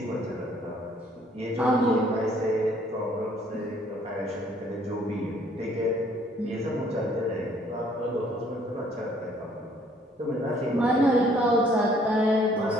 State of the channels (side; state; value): both; normal; correlation 0.61